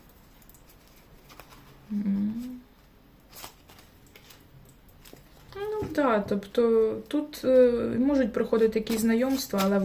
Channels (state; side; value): identical; both; correlation 1.00